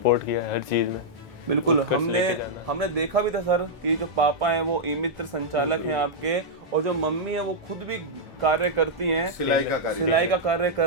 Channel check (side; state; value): both; normal; correlation -0.07